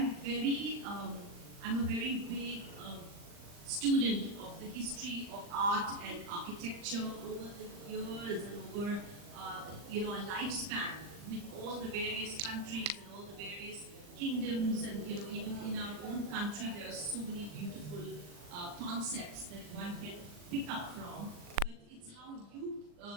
a very big student of the history of art and architecture over the years and over a lifespan with all the various countries and all the various kingdoms, and even in our own country there are so many beautiful concepts that one can pick up from. But it's how you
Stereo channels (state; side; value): late; left; 39 ms